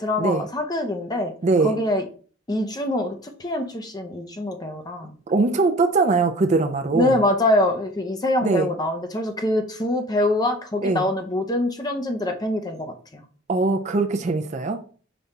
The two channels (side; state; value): both; normal; correlation 0.45